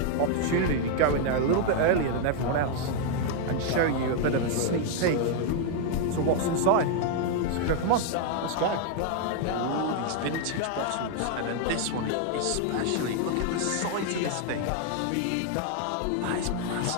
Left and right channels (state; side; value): different; both; correlation 0.00